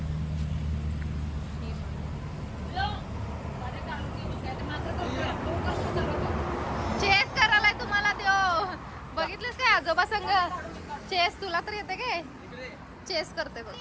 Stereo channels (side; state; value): both; identical; correlation 1.00